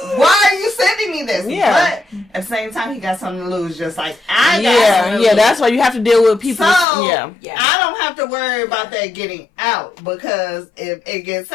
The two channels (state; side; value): drops out; right; at 6.9 s